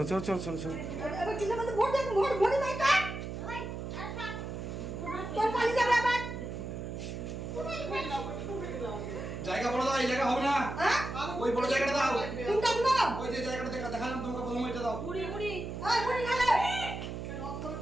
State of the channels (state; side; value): noise; right; hum, 6 dB below the sound